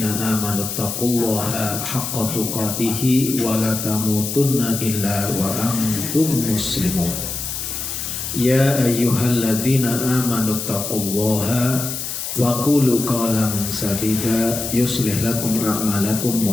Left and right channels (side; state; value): left; noise; hiss, 5 dB below the sound